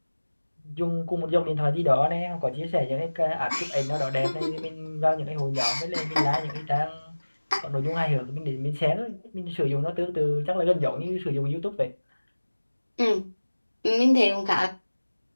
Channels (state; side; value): inverted; both; correlation -1.00